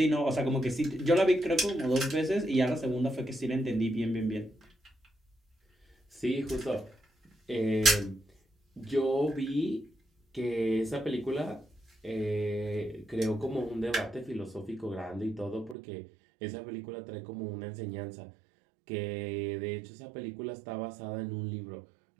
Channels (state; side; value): drops out; left; at 15.8 s